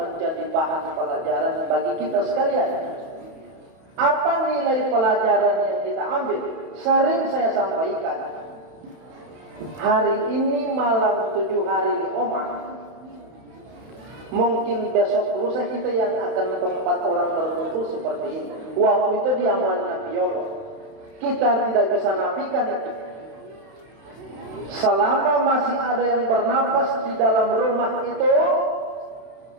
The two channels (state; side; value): late; left; 31 ms